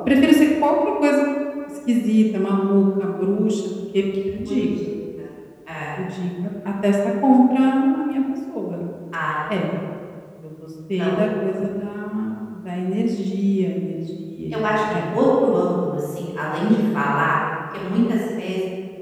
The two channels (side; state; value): both; identical; correlation 1.00